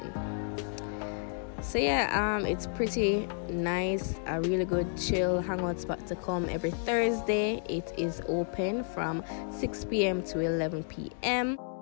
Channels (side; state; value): right; silent; digital silence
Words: So yeah, it's pretty nice, a really good chill hangout spot to come every Thursday. It is open from 6 p.m. to 11 p.m.